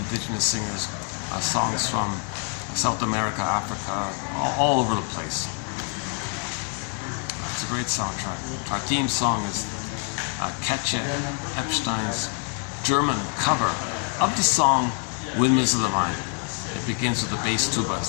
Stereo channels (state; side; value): quieter; right; 37.0 dB